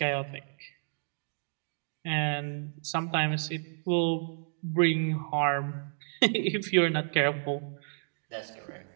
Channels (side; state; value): left; silent; digital silence